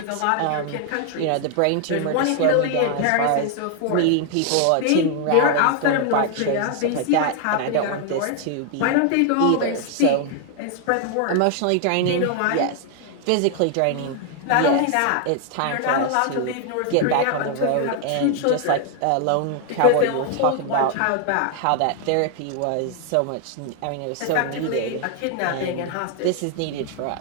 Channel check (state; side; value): different; both; correlation 0.00